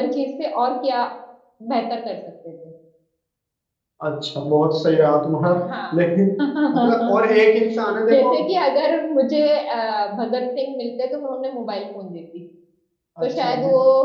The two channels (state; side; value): identical; both; correlation 1.00